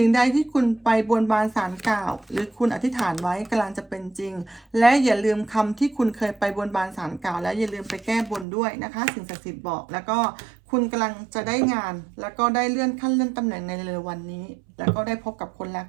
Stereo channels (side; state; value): left; drops out; at 8.5 s